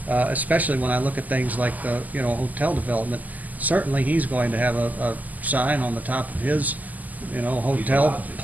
especially when I look at things like the, hotel development, certainly he's going to have a sign on the top of his, hotel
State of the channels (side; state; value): left; late; 0.080 ms